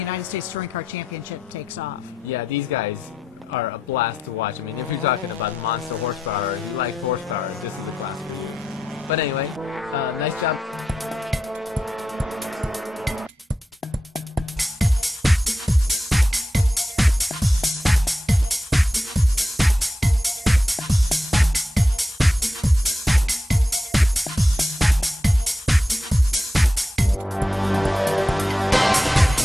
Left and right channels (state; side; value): normal; both; correlation 0.87